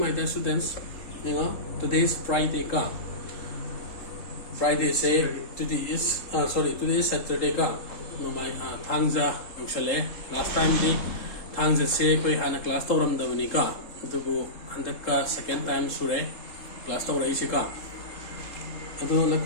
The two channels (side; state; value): right; late; 3.8 ms